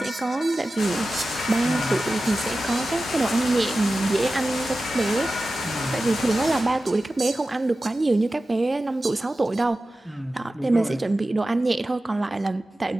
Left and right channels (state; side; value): normal; both; correlation 0.94